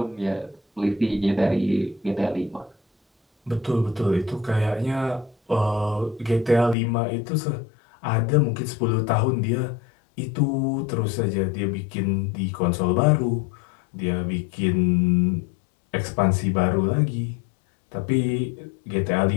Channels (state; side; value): drops out; right; at 6.8 s